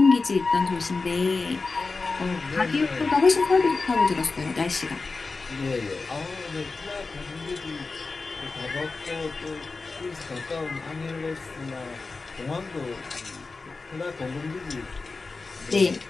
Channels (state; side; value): quieter; right; 3.9 dB